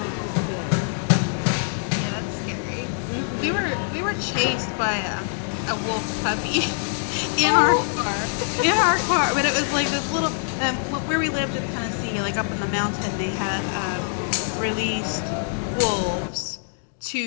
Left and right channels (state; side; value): silent; right; digital silence